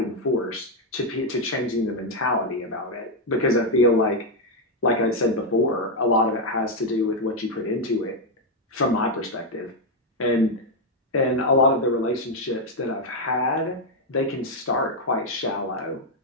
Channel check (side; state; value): both; normal; correlation 0.02